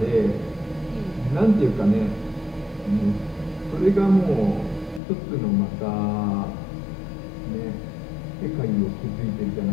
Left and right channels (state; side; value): drops out; right; at 5.0 s